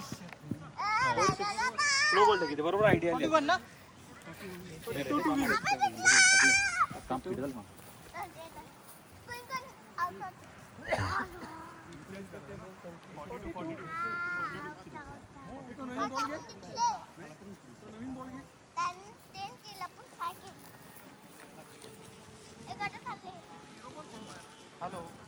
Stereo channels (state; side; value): identical; both; correlation 1.00